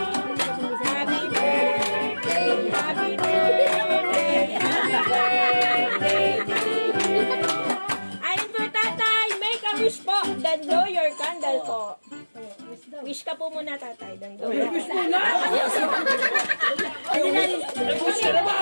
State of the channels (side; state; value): both; inverted; correlation -1.00